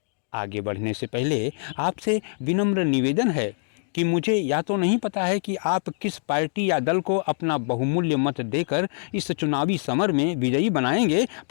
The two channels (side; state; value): right; silent; digital silence